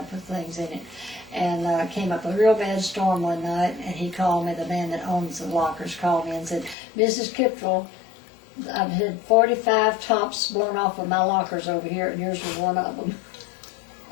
put things in it. And came up a real bad storm one night, and he called me, the man that owns the lockers called me and said, Mrs. Kiptrell, I've had 45 tops blown off of my lockers over here, and yours was one of them.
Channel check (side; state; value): right; drops out; at 6.8 s